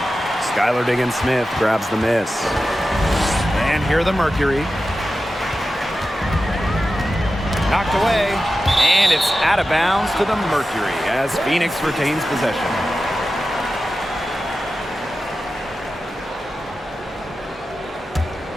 Skylar Diggins-Smith grabs the miss. And here the Mercury. Knocked away, and it's out of bounds to the Mercury as Phoenix retains possession.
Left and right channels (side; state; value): both; normal; correlation 0.93